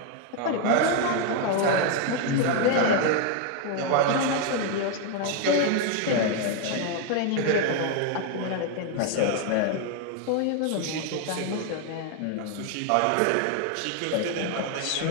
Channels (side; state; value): both; different; correlation 0.01